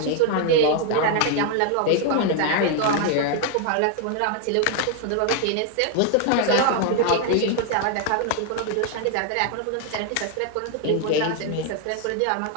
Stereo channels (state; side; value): different; both; correlation 0.00